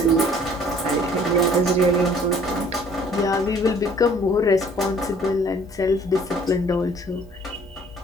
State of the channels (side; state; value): both; normal; correlation 0.55